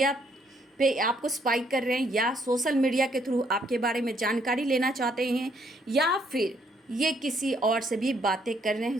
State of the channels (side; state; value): both; normal; correlation 0.69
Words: पे आपको स्पाई कर रहे हैं, या सोशल मीडिया के थ्रू आपके बारे में जानकारी लेना चाहते हैं, या फिर ये किसी और से भी बातें कर रहे